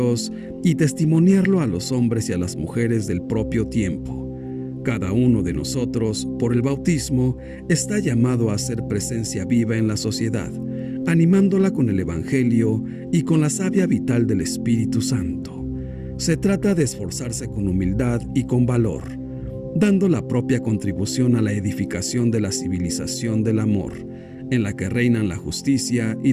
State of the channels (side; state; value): both; identical; correlation 1.00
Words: y testimoniarlo a los hombres y a las mujeres del propio tiempo. Cada uno de nosotros, por el bautismo, está llamado a ser presencia viva en la sociedad, animándola con el Evangelio y con la savia vital del Espíritu Santo. Se trata de esforzarse con humildad y con valor, dando la propia contribución a la edificación de la civilización del amor, en la que reinan la justicia y